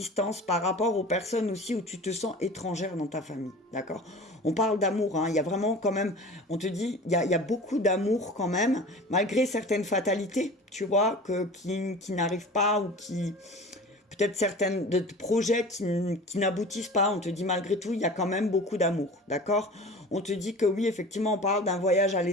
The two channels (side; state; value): both; normal; correlation 0.38